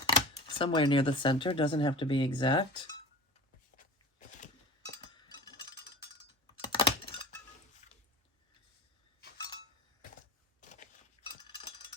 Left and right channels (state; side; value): normal; both; correlation 0.35